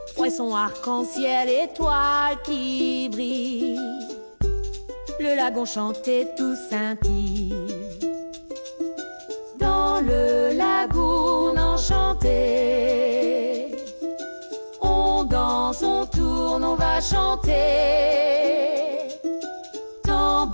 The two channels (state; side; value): inverted; both; correlation -1.00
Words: Poisson arc-en-ciel, étoiles qui brillent. Le lagon chantait tout scintille. Dans le lagoon enchanté, on danse, on tourne, on va chanter.